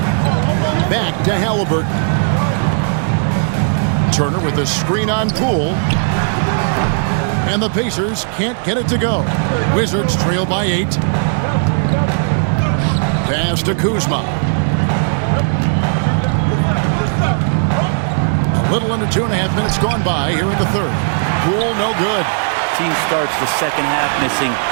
Back to Halliburton. Turner with a screen on Poole. And the Pacers can't get it to go. Wizards trail by 8. Pass to Kuzma. A little under 2.5 minutes gone by here in the third. Poole no good. Team starts the second half missing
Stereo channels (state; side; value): silent; left; digital silence